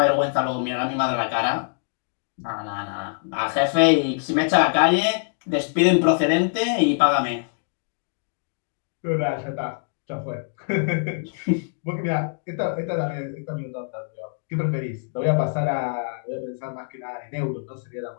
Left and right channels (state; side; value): silent; right; digital silence